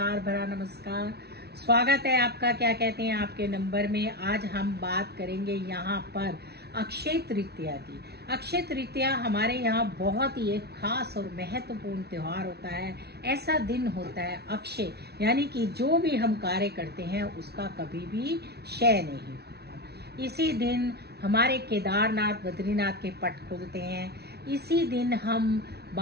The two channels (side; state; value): left; late; 0.48 ms